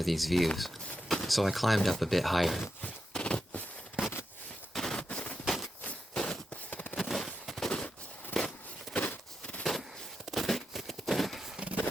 these views, so I climbed up a bit higher.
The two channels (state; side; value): normal; both; correlation 0.86